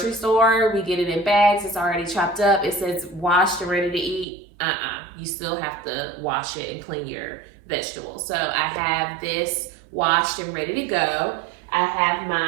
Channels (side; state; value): left; drops out; at 4.2 s